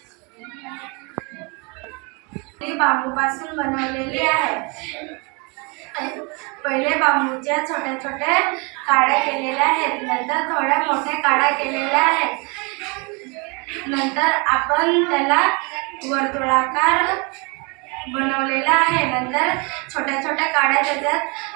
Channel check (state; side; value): quieter; left; 30.8 dB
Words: ही बांबूपासून बनवलेली आहे. पहिले बांबूच्या छोट्या छोट्या काड्या केलेल्या आहेत, नंतर थोड्या मोठ्या काड्या केलेल्या आहेत. नंतर आपण त्याला वर्तुळाकार बनवलेला आहे. नंतर छोट्या छोट्या काड्या त्याच्यात